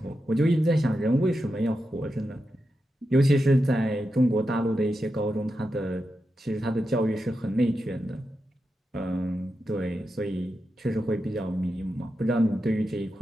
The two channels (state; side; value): normal; both; correlation 0.88